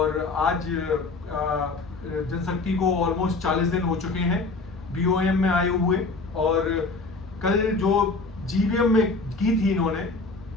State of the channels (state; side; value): quieter; right; 3.7 dB